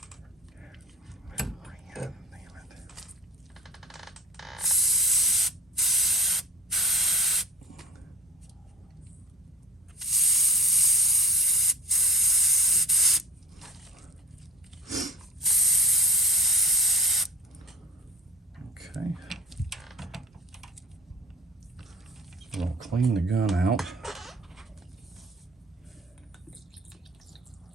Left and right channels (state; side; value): normal; both; correlation 0.43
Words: Okay. So I'll clean the gun out.